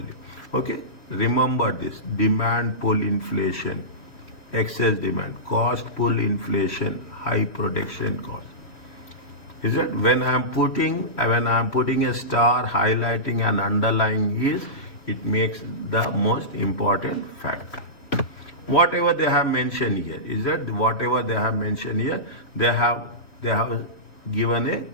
Okay? Remember this. Demand pull inflation, excess demand, cost pull inflation, high production cost. Is that when I am putting a star highlighting and underlying is, it makes the most important factor. Whatever they have mentioned here, they have given a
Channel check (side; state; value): right; late; 3.1 ms